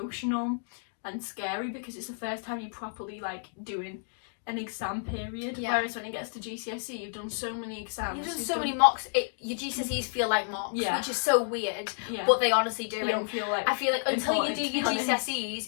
and scary, because it's the first time you properly like doing an exam period, whereas when it gets to GCSE you've done so many exams, you've done so many mocks, your GCSEs feel like mocks, which is so weird, but they honestly do. You don't feel like, I feel like until you do your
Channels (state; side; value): silent; right; digital silence